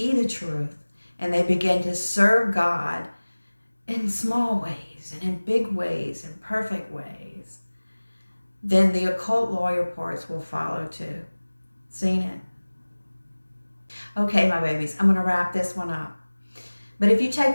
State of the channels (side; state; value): both; inverted; correlation -1.00